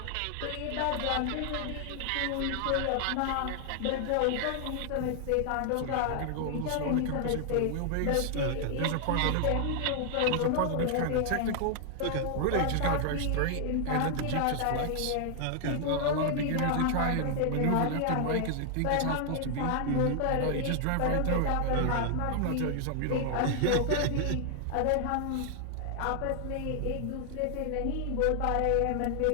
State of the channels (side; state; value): both; different; correlation 0.00